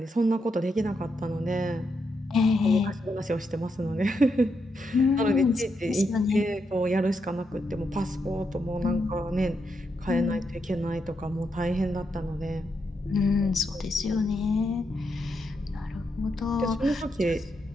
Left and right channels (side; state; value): both; normal; correlation 0.82